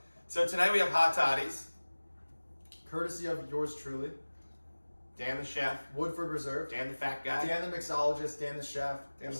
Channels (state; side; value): inverted; both; correlation -1.00